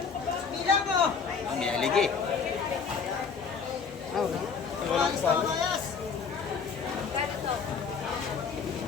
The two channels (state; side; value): quieter; right; 5.8 dB